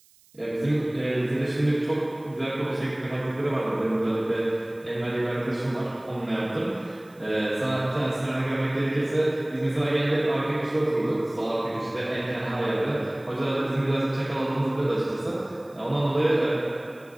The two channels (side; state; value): right; noise; hiss, 29 dB below the sound